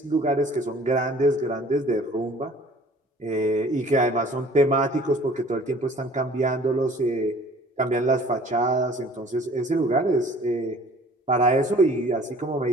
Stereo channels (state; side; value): normal; both; correlation 0.51